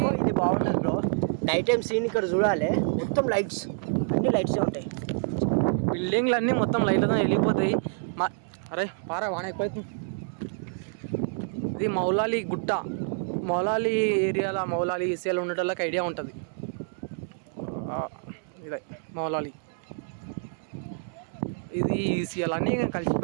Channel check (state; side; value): silent; left; 60 dB below the other